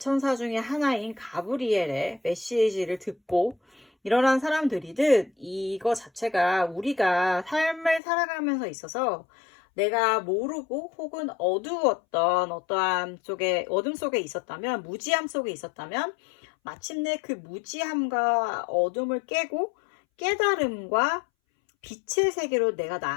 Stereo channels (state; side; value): drops out; right; at 8.0 s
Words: 중에 하나인 가브리엘의 메시지를 듣고 일어난 사람들이듯 이거 자체가 우리가 삶을 살아가면서 있어서 내가 모르고 혹은 어두웠던 어떠한 어둠 속에 있었다면 무지함 속에 있었다면 마침내 그 무지함과 어둠을 깨고 깨달음과 빛의 세계로 내가